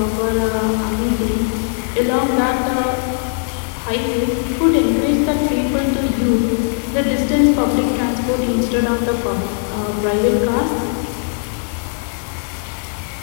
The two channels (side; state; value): right; silent; 58 dB below the other